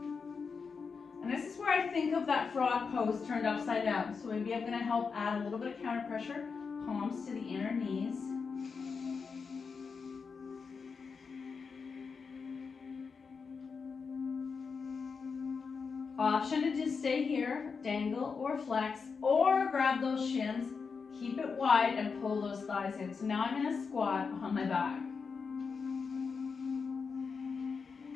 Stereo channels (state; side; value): quieter; right; 5.3 dB